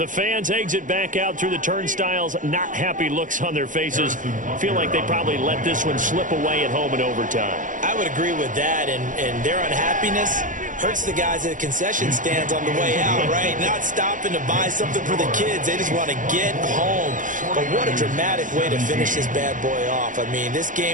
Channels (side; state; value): left; late; 0.38 ms